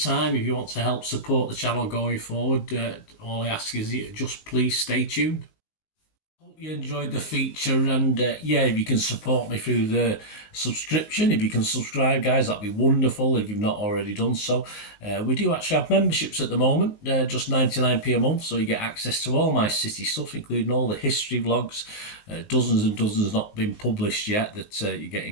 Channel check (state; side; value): late; right; 19 ms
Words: if you want to help support the channel going forward. All I ask is you just please stay tuned. Hope you enjoyed the feature, and if you can support me through the subscription, if you can subscribe, guys, that'd be wonderful if you've not already done so. We do actually have memberships at the moment, just 99p a month, so you get access to all my City stuff, including all the history vlogs, dozens and dozens not been published yet that you get